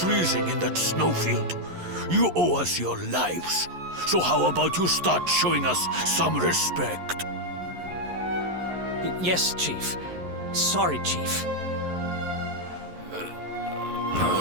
in that snowfield. You owe us your lives. So how about you start showing us some respect? Yes, Chief. Sorry, Chief.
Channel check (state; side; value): late; left; 11 ms